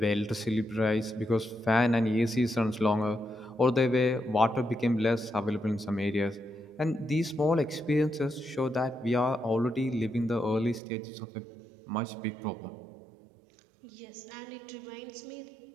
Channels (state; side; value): drops out; left; at 10.8 s